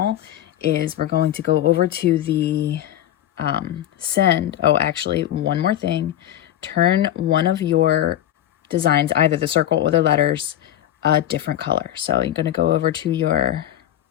is we're going to go over to the send. Oh, actually, one more thing. Turn one of your designs, either the circle or the letters, a different color. So you're going to go over to your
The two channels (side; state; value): right; quieter; 11.9 dB